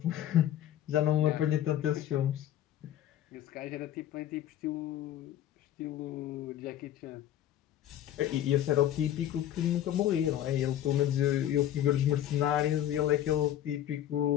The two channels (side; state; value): right; quieter; 11.7 dB